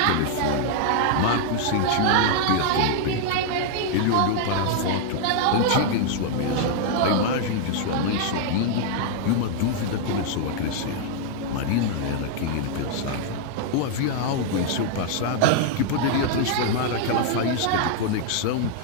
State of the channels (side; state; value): both; different; correlation -0.01